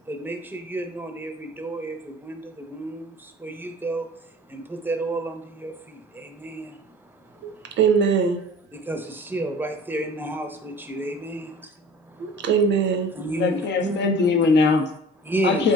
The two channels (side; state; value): both; normal; correlation 0.44